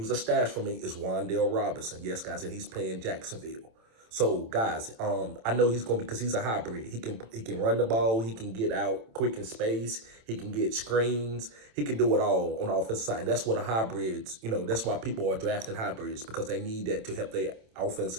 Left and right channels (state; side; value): late; left; 27 ms